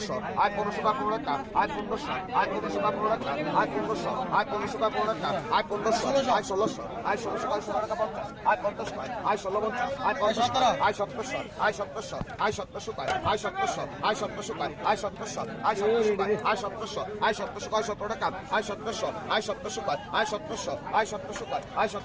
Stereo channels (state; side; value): identical; both; correlation 1.00